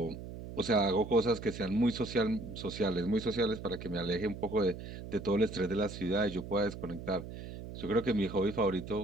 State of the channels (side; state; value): right; noise; hum, 10 dB below the sound